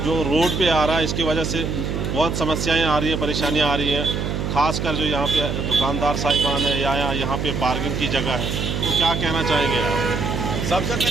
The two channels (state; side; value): noise; right; hum, 2 dB below the sound